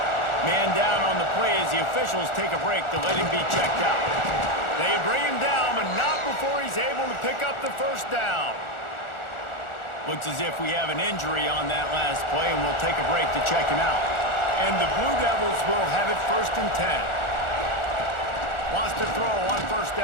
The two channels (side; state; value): right; late; 1.4 ms